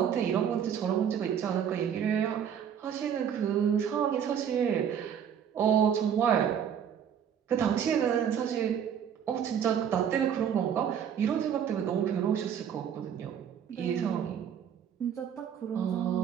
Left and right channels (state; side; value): quieter; left; 8.5 dB